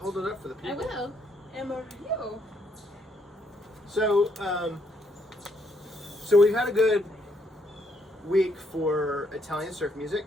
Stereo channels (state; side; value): normal; both; correlation 0.73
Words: it up for the I people. will. Amarillo. So so we've had a good week for Italian surf